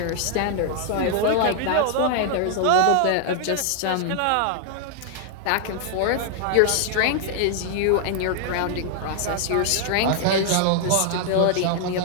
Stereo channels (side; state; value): both; different; correlation 0.00